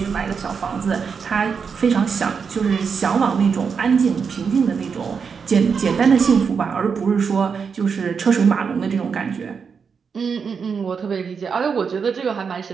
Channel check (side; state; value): left; quieter; 6.0 dB